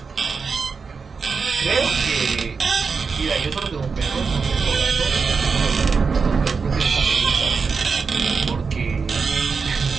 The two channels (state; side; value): quieter; left; 5.1 dB